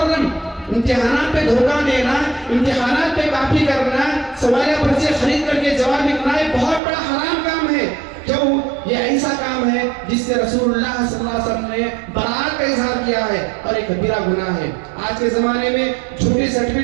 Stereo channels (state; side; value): drops out; left; at 6.8 s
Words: امتحانات پہ دھوکہ دینا، امتحانات پہ کاپی کرنا، سوالیہ پرچے خرید کر کے جواب لکھنا یہ بہت بڑا حرام کام ہے. کیوں؟ یہ ایسا کام ہے جس سے رسول اللہ صلی اللہ علیہ وسلم نے برات کا اظہار کیا ہے اور ایک کبیرہ گناہ ہے. آج کے زمانے میں جھوٹی